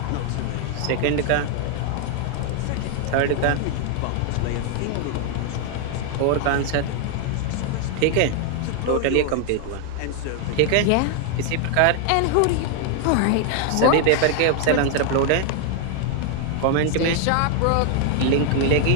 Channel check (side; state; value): both; different; correlation 0.00